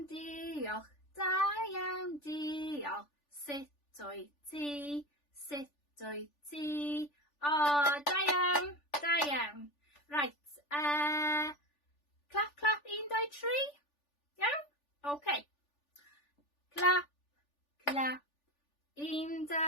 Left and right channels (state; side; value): late; right; 3.4 ms